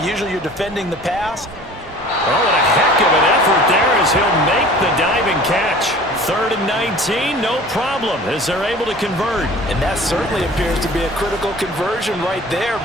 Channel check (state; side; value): normal; both; correlation 0.45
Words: Usually you're defending the pass. Oh, and a heck of an effort there as he'll make the diving catch. 3rd and 19, no problem, as they're able to convert. And that certainly appears to be a critical conversion right there